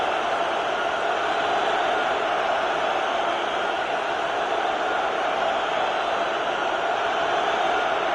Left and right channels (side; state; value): both; identical; correlation 1.00